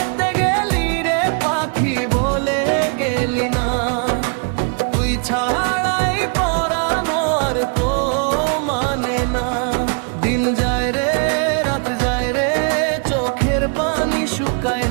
গেলি রে পাখি বলে গেলি না, তুই ছাড়াই পরানো আর তো মানে না। দিন যায় রে রাত যায় রে চোখের পানি শুকায়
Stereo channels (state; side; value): quieter; left; 39.4 dB